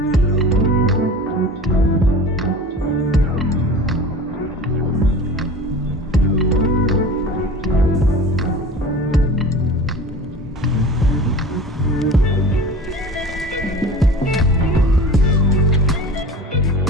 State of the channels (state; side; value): normal; both; correlation 0.37